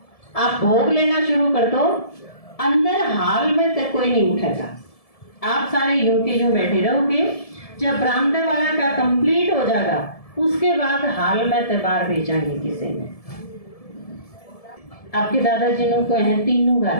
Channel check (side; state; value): right; late; 1.7 ms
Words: आप भोग लेना शुरू कर दो, अंदर हाल में तक कोई नहीं उठेगा। आप सारे यूं के यूं बैठे रहोगे। जब बरामदा वाला का कंप्लीट हो जाएगा उसके बाद हाल में तबार भेजेंगे किसी ने। आपके दादाजी को हैं तीनों